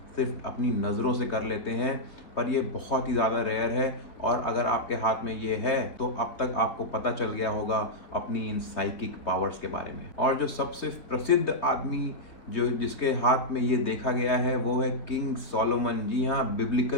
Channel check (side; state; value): right; late; 3.2 ms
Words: सिर्फ अपनी नज़रों से कर लेते हैं, पर ये बहुत ही ज़्यादा रेयर है। और अगर आपके हाथ में ये है तो अब तक आपको पता चल गया होगा अपनी इन साइकिक पावर्स के बारे में। और जो सबसे प्रसिद्ध आदमी जो जिसके हाथ में ये देखा गया है वो है किंग सोलोमन। जी हाँ,